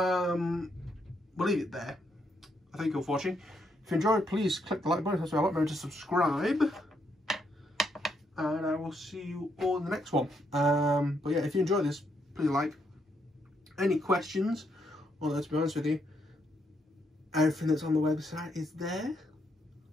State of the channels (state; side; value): normal; both; correlation 0.77